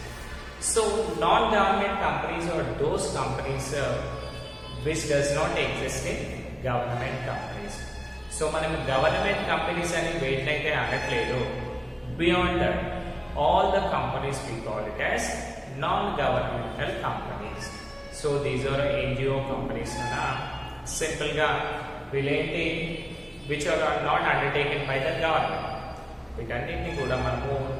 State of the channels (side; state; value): both; identical; correlation 1.00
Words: So non-government companies are those companies which does not exist in government companies. So మనం government companies అని వేటినైతే అనట్లేదు, beyond that all the companies we call it as non-governmental companies. So these are NGO companies na simple గా వీళ్ళేంటి which are not undertaken by the government. వీటన్నిటిని కూడా మనము